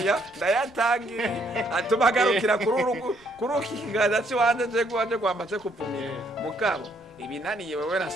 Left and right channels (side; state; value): left; noise; rumble, 28 dB below the sound